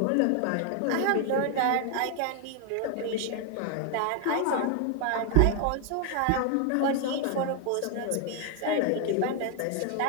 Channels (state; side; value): different; both; correlation 0.00